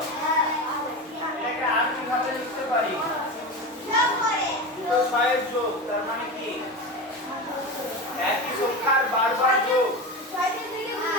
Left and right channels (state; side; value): normal; both; correlation 0.23